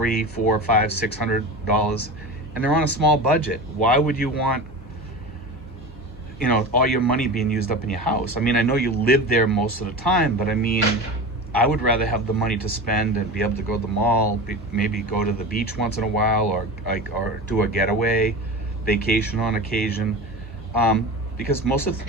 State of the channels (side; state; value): both; normal; correlation 0.29